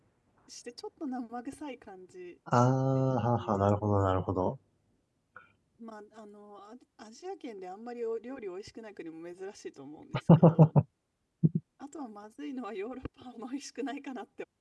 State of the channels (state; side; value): identical; both; correlation 1.00